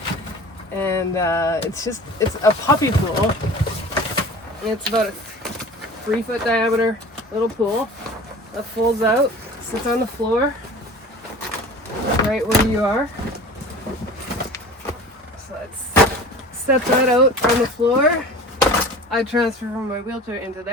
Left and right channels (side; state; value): both; normal; correlation 0.39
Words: and it's a puppy pool. It's about a 3-foot diameter little pool that folds out, sits on the floor right where you are. So let's set that out on the floor. I transfer from my wheelchair into